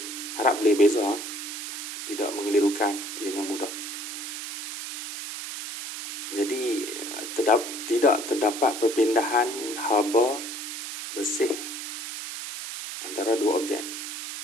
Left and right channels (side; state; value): right; noise; hiss, 7 dB below the sound